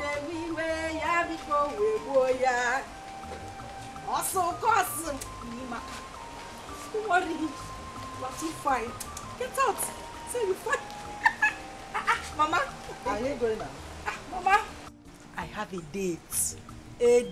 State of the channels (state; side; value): identical; both; correlation 1.00